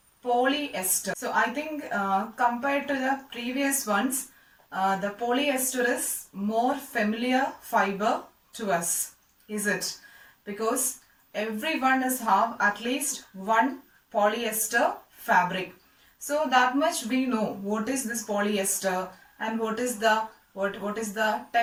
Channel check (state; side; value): identical; both; correlation 1.00